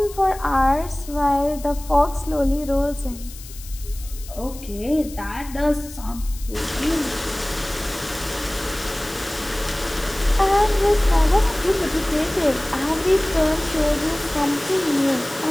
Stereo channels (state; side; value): noise; left; hiss, 17 dB below the sound